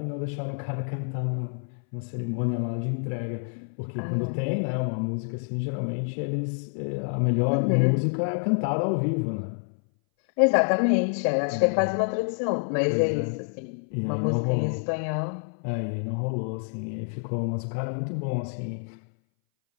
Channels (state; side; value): silent; right; 59 dB below the other